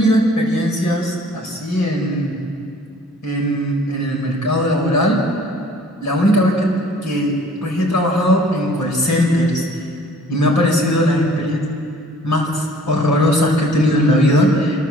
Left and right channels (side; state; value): both; normal; correlation 0.53